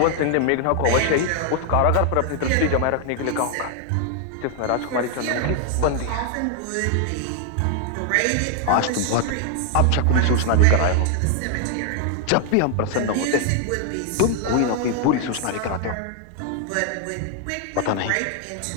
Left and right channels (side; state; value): both; different; correlation 0.00